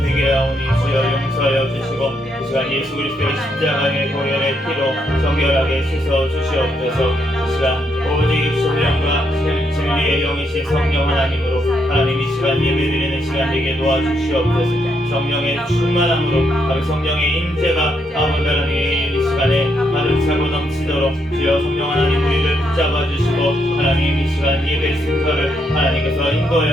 주여 용서하여 주시고 이 시간 예수 그리스도의 십자가의 보혈의 피로 정결하게 씻어 주시옵소서. 이 시간 오직 신령과 진리의 영이신 성령 하나님으로 하나님 이 시간 예배드리는 시간 되게 도와주시옵소서. 성령의 충만함으로 성령의 임재가 아버지 하나님 이 시간에 가득 차고 넘치도록 주여 성령 하나님 우리를 붙잡아 주시고 하나님 이 시간 예배 순서를 하나님께서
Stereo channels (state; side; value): normal; both; correlation 0.77